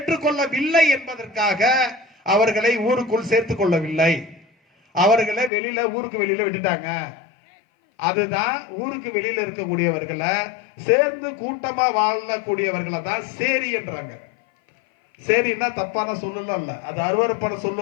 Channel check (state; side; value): drops out; right; at 5.5 s